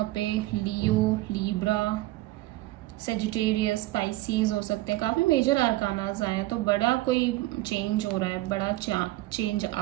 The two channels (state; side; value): quieter; left; 18.0 dB